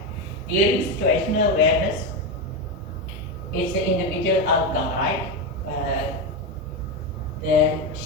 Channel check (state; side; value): normal; both; correlation 0.12